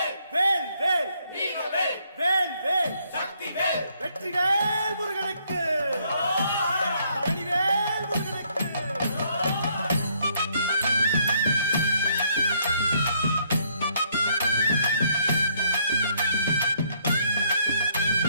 வேல் வேல் வீரவேல் வேல் வேல் சக்திவேல் வெற்றிவேல் முருகனுக்கு பழனிவேல் முருகனுக்கு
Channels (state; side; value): inverted; both; correlation -0.69